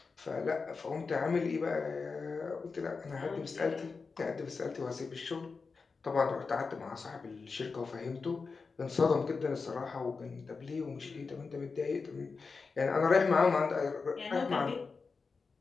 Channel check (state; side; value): quieter; right; 4.6 dB